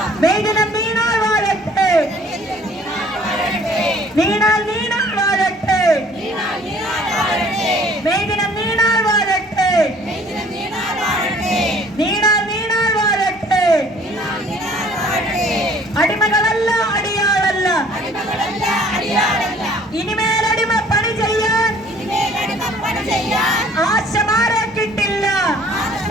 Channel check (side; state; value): both; normal; correlation 0.55